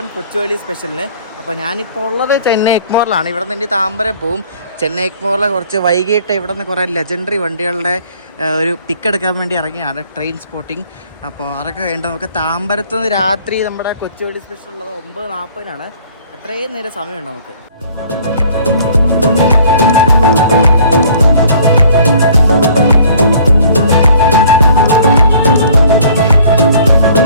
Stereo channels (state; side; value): inverted; both; correlation -0.55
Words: കൊച്ചുവേളി സ്പെഷ്യലിന്. അപ്പോൾ ഞാനിപ്പോൾ ഉള്ളത് ചെന്നൈ എഗ്മോറിലാണ്. ഇവിടെ നിന്ന് താമ്പരം പോവും. ചെന്നൈ എഗ്മോറിലെ കുറച്ച് വൈകിട്ട് ഇവിടെ നിന്ന് കുറേ ലെജൻഡറി വണ്ടികളുടെ ഒരു പിക്ക് എടുക്കാൻ വേണ്ടി ഇറങ്ങിയാണ് ട്രെയിൻ സ്പോട്ടിങ്. അപ്പോൾ അതൊക്കെ കഴിഞ്ഞിട്ട് നമുക്ക് താമ്പരത്ത് നിന്ന് രാത്രി നമ്മുടെ കൊച്ചുവേളി സ്പെഷ്യൽ ഉള്ളത് 9:40 അത്രയും നേരം സമയമുണ്ട് നമുക്ക്.